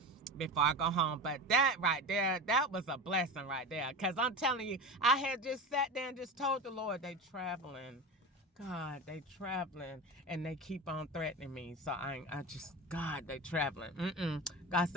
before I go home. But that right there, that was a blessing right there. Because I'm telling you, I had just sat there and just told the Lord, they traveling. God, they traveling. And they keep on threatening me. So God, they traveling. God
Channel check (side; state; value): both; normal; correlation 0.26